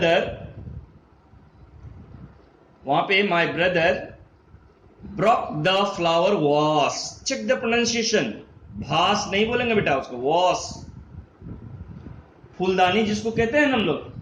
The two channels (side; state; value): both; identical; correlation 1.00